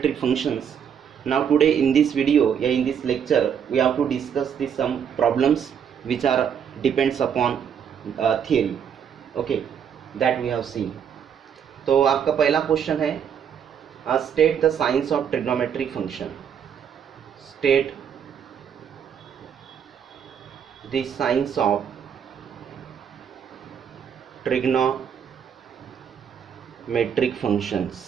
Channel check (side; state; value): left; quieter; 8.0 dB